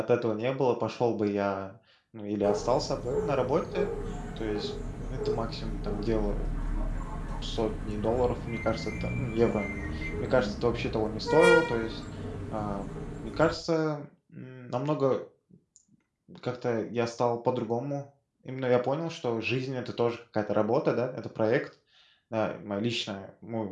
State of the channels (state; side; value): identical; both; correlation 1.00